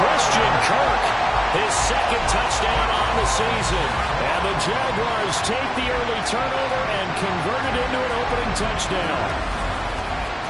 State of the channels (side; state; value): both; identical; correlation 1.00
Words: Kirk, his second touchdown on the season. And the Jaguars take the early turnover and convert it into an opening touchdown.